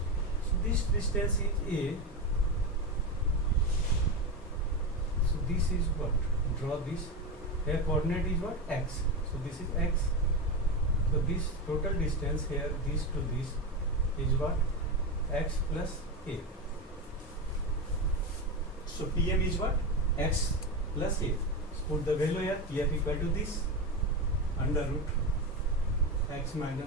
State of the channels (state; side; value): normal; both; correlation 0.17